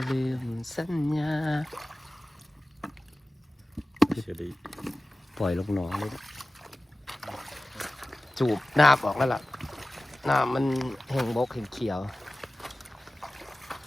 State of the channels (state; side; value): normal; both; correlation 0.96